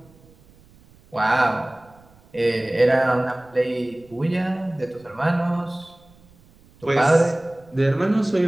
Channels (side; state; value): right; noise; rumble, 28 dB below the sound